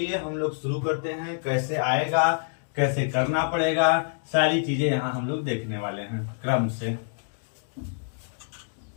हम लोग शुरू करते हैं। कैसे आएगा, कैसे करना पड़ेगा, सारी चीजें यहाँ हम लोग देखने वाले हैं क्रम से।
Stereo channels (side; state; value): right; silent; digital silence